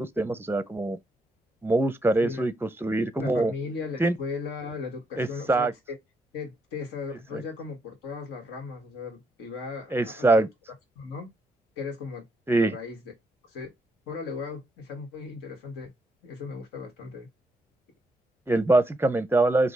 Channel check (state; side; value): normal; both; correlation 0.77